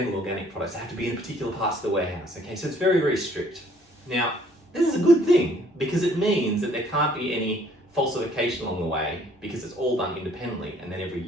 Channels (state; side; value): normal; both; correlation 0.60